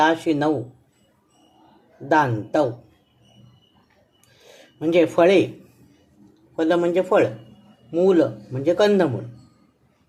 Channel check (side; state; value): both; identical; correlation 1.00